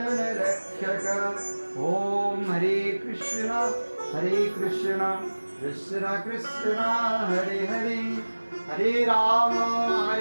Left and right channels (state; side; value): inverted; both; correlation -1.00